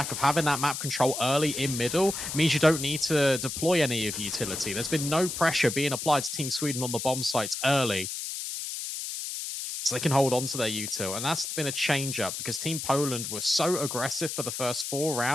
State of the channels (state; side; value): noise; left; hiss, 5 dB below the sound